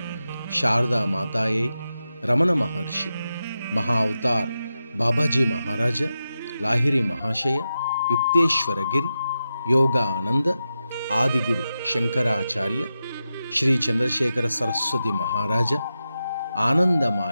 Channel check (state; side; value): inverted; both; correlation -0.90